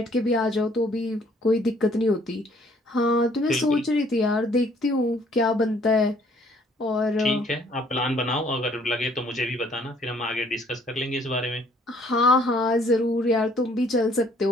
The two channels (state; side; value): normal; both; correlation 0.61